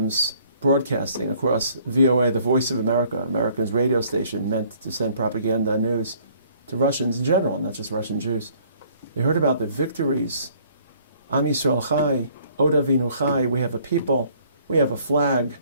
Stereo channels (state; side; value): inverted; both; correlation -0.59